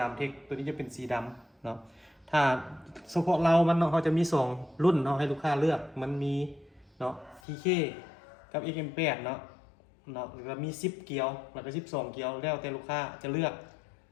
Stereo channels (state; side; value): drops out; right; at 7.4 s